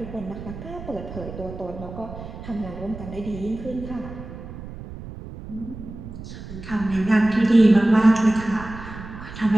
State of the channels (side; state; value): right; noise; rumble, 12 dB below the sound